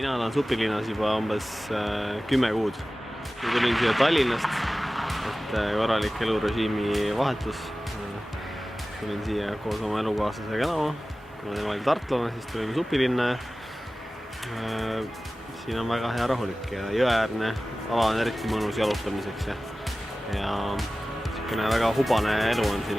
Mina olen Supilinnas juba umbes 10 kuud. Tulin siia Tallinnast, et korralik elurežiimi vahetus. Tulin siia koos oma elukaaslasega elama. Kuna tema oli tartlane, siis tulime Supilinna. Siin on väga hea rahulik ja jõeäärne ala on eriti mõnus jalutamiseks. Ja väga hubane elu on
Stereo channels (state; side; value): normal; both; correlation 0.96